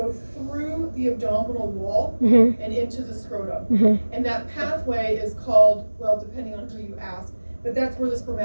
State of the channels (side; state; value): both; inverted; correlation -1.00